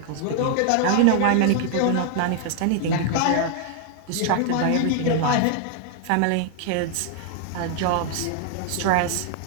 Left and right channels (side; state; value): both; different; correlation 0.00